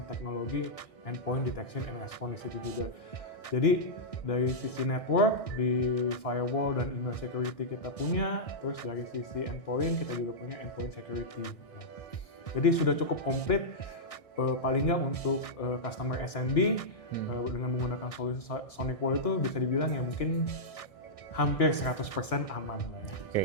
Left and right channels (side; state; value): right; late; 1.6 ms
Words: teknologi endpoint detection and response di situ juga. Jadi dari sisi network, di firewall dan email security kita punya, terus dari sisi endpoint kita juga punya endpoint security. Ya. Jadi sudah cukup komplit paling nggak untuk customer SMB dengan menggunakan solusi SonicWall itu bisa dibilang ya mungkin hampir 100% aman lah ya. Oke,